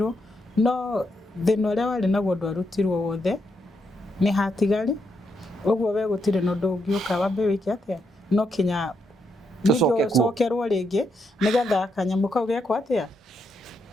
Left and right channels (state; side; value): normal; both; correlation 0.79